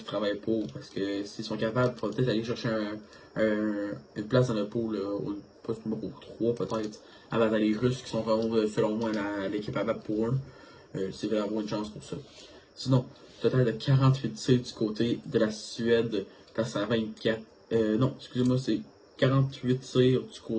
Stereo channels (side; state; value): both; identical; correlation 1.00